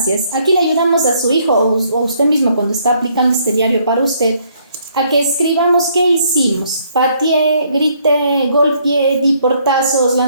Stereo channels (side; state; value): both; inverted; correlation -0.67